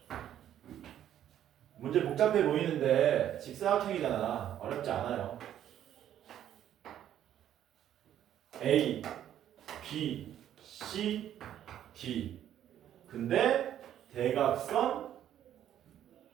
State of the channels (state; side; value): quieter; left; 10.9 dB